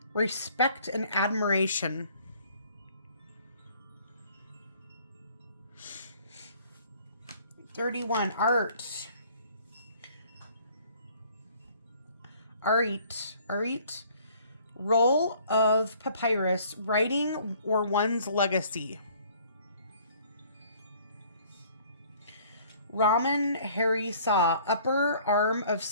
respect and admiration. $31, art. Arit, roll of papyrus, writing or one's legacy. Raman Hari Sa, upper arm of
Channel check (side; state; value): both; inverted; correlation -0.57